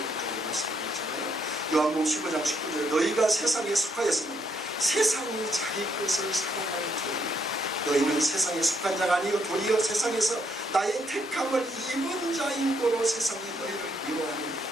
말씀드렸잖아요. 요한복음 15장 19절에 너희가 세상에 속하였으면 세상이 자기 것을 사랑하는 도리 너희는 세상에 속한 자가 아니요 도리어 세상에서 나의 택함을 입은 자인 거로 세상이 너희를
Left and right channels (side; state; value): both; normal; correlation 0.73